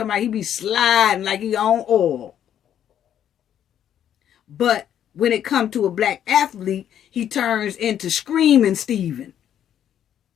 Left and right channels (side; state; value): right; quieter; 10.0 dB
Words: about he be sliding like he on oil. But when it comes to a black athlete, he turns into Screaming Steven.